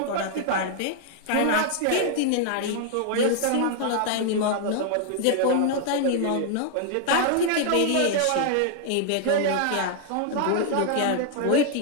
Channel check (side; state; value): both; different; correlation 0.00